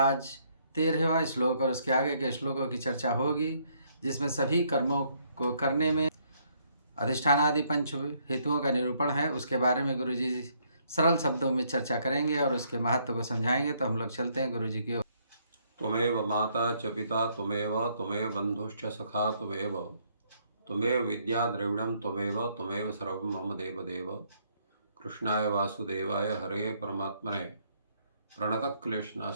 13वां श्लोक और उसके आगे के श्लोकों की चर्चा होगी, जिसमें सभी कर्मों को करने में अधिष्ठानादि पंच हेतुओं का निरूपण है। उसके बारे में गुरु जी सरल शब्दों में चर्चा करेंगे और उसके महत्व को समझाएंगे। तो हम लोग चलते हैं गुरु जी की ओर। त्वमेव माता च पिता त्वमेव बंधुश्च सखा त्वमेव विद्या द्रविणं त्वमेव सर्वं मम देव। कृष्णाय वासुदेवाय हरे परमात्मने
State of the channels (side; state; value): both; inverted; correlation -0.69